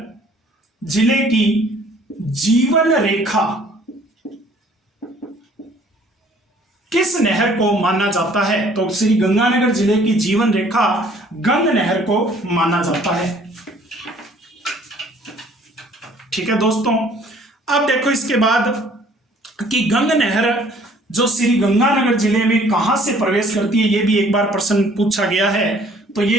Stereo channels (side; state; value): both; normal; correlation 0.57